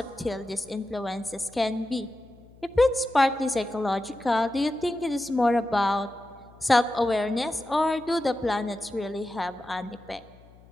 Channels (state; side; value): noise; left; hum, 25 dB below the sound